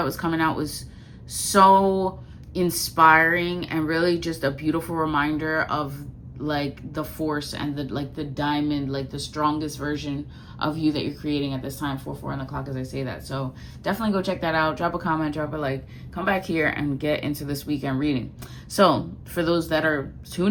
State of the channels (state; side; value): identical; both; correlation 1.00